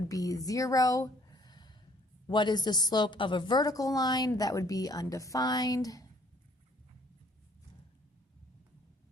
be 0. What is the slope of a vertical line? That would be undefined.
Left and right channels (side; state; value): both; normal; correlation 0.61